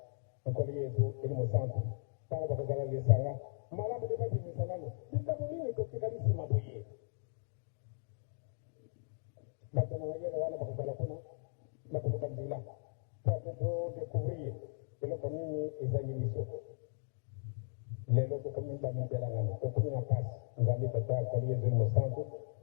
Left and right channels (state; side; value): silent; right; digital silence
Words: nkolo yezu eli mosantu ntango bakozala lesanga malamu nde babimisa nano likambo nini totikali nsima boye bato na mayele wana bakozala kuna bakoluka nzela po ate todécouvrir eloko nini ezangi biso lelo tokomi bamitelangano tokomi na pasi nzambe tata nkolo yezu eli mosantu